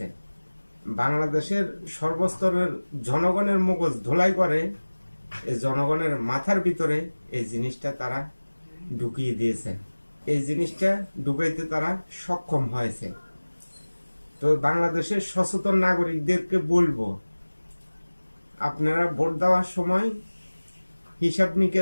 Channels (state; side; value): inverted; both; correlation -1.00